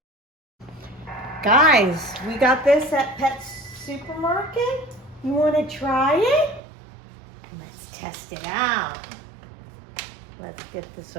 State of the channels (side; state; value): left; drops out; at 6.6 s